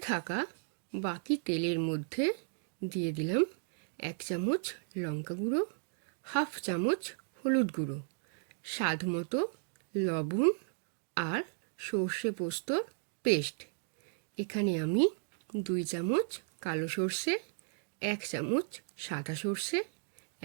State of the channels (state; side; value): silent; left; digital silence